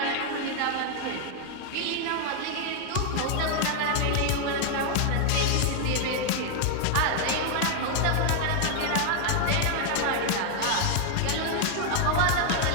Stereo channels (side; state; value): both; different; correlation 0.00